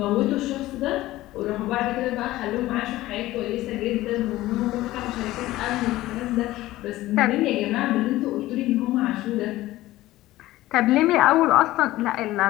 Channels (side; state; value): right; quieter; 16.6 dB